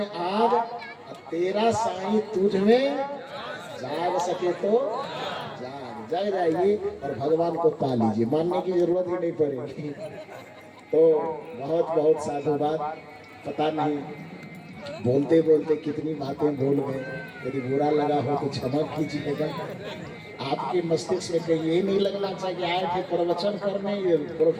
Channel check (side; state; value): both; identical; correlation 1.00